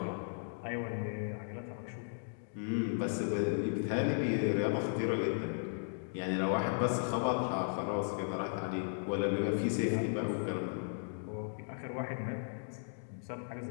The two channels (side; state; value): right; silent; digital silence